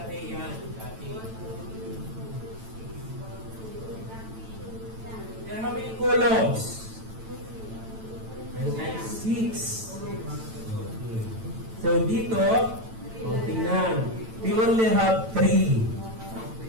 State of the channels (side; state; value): left; late; 9.0 ms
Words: yan. Dati. There are how many columns? Meron tayong 6. Okay. So dito, tingnan. We only have 3.